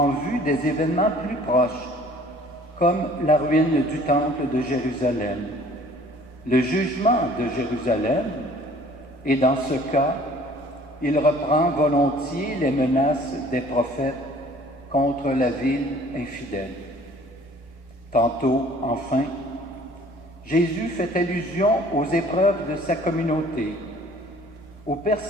vue des événements plus proches, comme la ruine du temple de Jérusalem, le jugement de Jérusalem, et dans ce cas, il reprend volontiers les menaces des prophètes contre la ville infidèle. Tantôt, enfin, Jésus fait allusion aux épreuves de sa communauté, aux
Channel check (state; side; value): normal; both; correlation 0.53